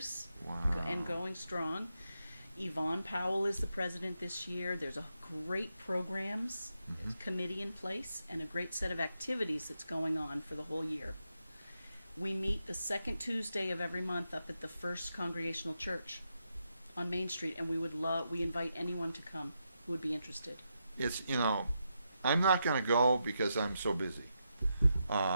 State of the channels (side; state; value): both; inverted; correlation -0.84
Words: Wow. and going strong. Yvonne Powell is the president this year. There's a great programs committee in place and a great set of activities that's going on for the whole year. We meet the second Tuesday of every month up at the First Congregational Church on Main Street, and we invite anyone to come who would be interested. It's I'm not going to go because I'm so busy.